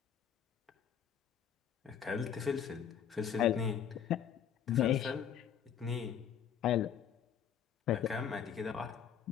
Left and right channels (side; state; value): right; quieter; 8.6 dB